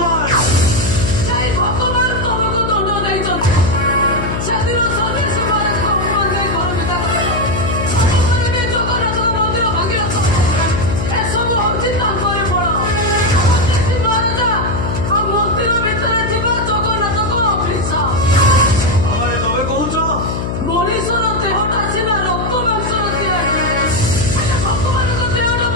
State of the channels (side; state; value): left; noise; hum, 3 dB below the sound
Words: ସେଇ ଭଗବାନ ତମକୁ ଦଣ୍ଡ ଦେଇଛନ୍ତି। ସେଦିନ ସ୍ୱଦେଶୀ ମହାରାଜଙ୍କ ଅପମାନ ଦେଇ ଘର ବିଦା କଲେ। ସବୁବେଳେ ବି ଜଗନ୍ନାଥଙ୍କ ମନ୍ଦିର ଭାଙ୍ଗିଲ ତ। ଏସବୁ ହଉଛି ତାଙ୍କରି ଫଳ। ସ୍ୱଦେଶୀ ମହାରାଜା ଆଉ ମନ୍ଦିର ଭିତରେ ଥିବା ଜଗନ୍ନାଥଙ୍କ ଅଭିଶାପ। ଆରେ ତମେ କହୁଛ ମଣିଷର ଦେହଟା ସିନା ରକ୍ତ ମାଂସର ତିଆରି,